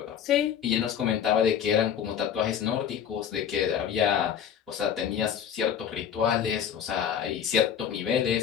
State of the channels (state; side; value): quieter; right; 8.5 dB